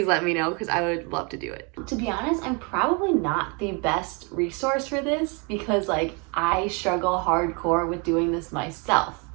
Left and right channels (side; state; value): left; quieter; 32.6 dB